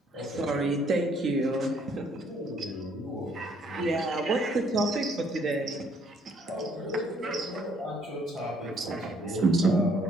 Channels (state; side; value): normal; both; correlation 0.65